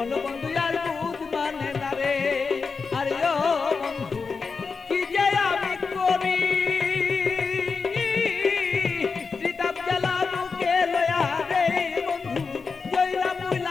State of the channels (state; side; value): quieter; right; 4.9 dB